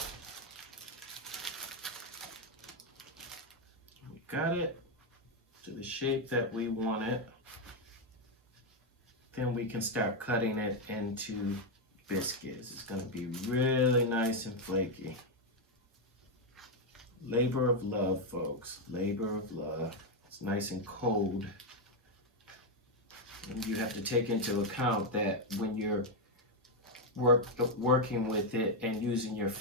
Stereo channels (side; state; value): both; normal; correlation 0.03